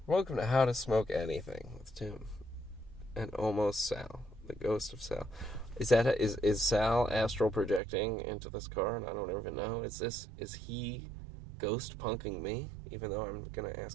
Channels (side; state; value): left; drops out; at 7.8 s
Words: Welcome to How to Smoke Anything with Tim. And almost Sal. The ghost of Sal. Is Sal astral projecting into this car? And I don't even know. Is he ghost punking me? Even though I'm going to